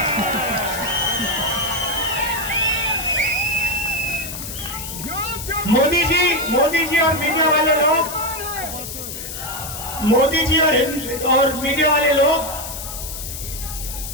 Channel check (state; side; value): noise; left; hiss, 8 dB below the sound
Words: मोदी जी और मीडिया वाले लोग, मोदी जी और मीडिया वाले लोग